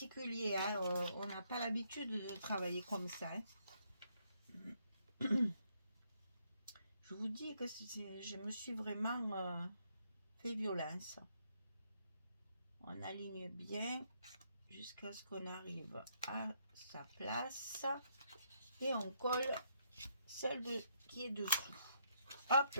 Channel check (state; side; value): inverted; both; correlation -0.73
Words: hein, on n'a pas l'habitude de travailler comme ça. Hein. Je vous dis que je me suis vraiment fait violence. On aligne bien jusqu'à ce qu'on arrive à sa place et on colle celle qui est dessous. Hop